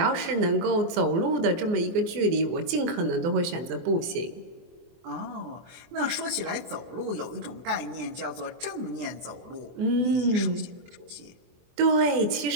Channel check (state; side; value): late; left; 24 ms